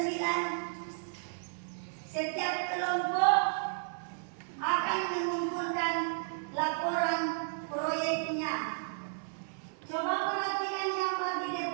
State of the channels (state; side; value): silent; left; digital silence